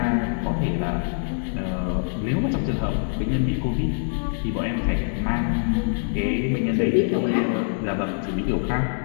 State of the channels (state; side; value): silent; right; 62 dB below the other